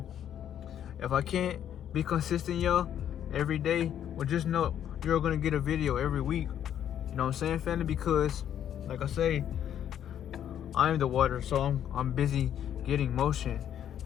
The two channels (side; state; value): right; quieter; 10.0 dB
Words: if I can't be consistent, y'all, every day, well, just know you're gonna get a video every week. You know what I'm saying, family? Because, like I say, I am the water, so I'm busy getting motion